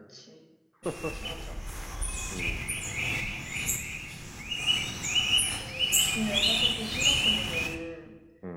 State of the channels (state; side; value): identical; both; correlation 1.00